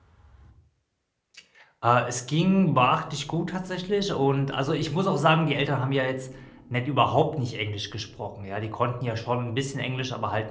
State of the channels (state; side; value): identical; both; correlation 1.00